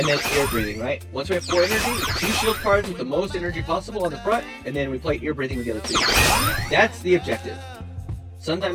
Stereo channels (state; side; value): identical; both; correlation 1.00